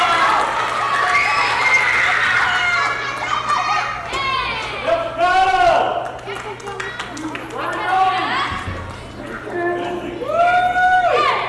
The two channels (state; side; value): identical; both; correlation 1.00